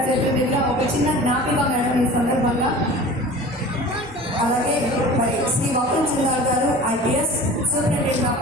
చేతుల మీదుగా ఒక చిన్న జ్ఞాపిక మేడం ఈ సందర్భంగా. అలాగే మరి శ్రీ వకుల్ జిందాల్ గారు ఐపీఎస్ సూపరింటెండెంట్ ఆఫ్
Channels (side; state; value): both; normal; correlation 0.40